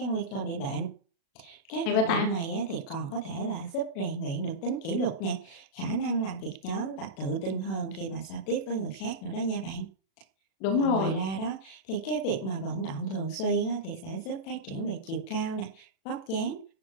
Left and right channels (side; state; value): right; late; 36 ms